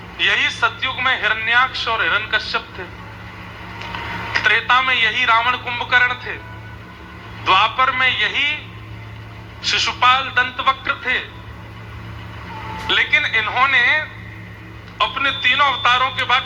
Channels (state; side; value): identical; both; correlation 1.00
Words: यही सतयुग में हिरण्याक्ष और हिरण्यकश्यप थे, त्रेता में यही रावण कुंभकर्ण थे, द्वापर में यही शिशुपाल दंतवक्र थे। लेकिन इन्होंने अपने तीनों अवतारों के